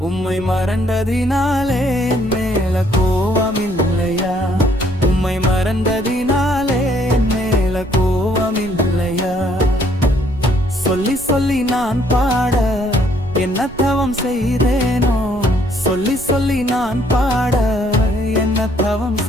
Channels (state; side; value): noise; right; rumble, 18 dB below the sound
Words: உம்மை மறந்ததினாலே என் மேல கோவமில்லையா? உம்மை மறந்ததினாலே என் மேல கோவமில்லையா? சொல்லி சொல்லி நான் பாட என்ன தவம் செய்தேனோ? சொல்லி சொல்லி நான் பாட என்ன தவம்